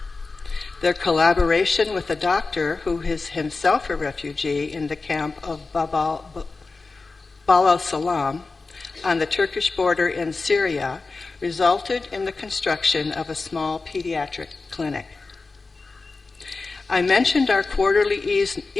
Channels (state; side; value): quieter; right; 3.9 dB